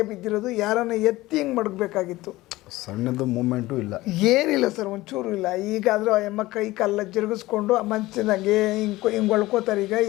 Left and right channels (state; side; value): quieter; right; 18.4 dB